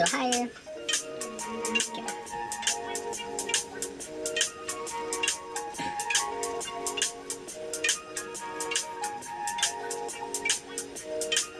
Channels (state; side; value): identical; both; correlation 1.00